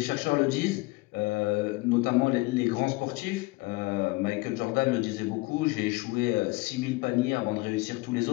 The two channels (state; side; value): quieter; right; 23.3 dB